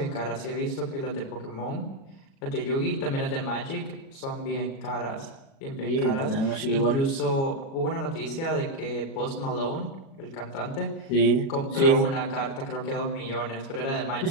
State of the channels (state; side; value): late; right; 37 ms